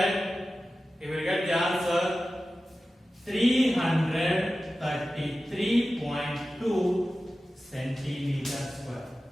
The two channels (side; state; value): both; normal; correlation 0.94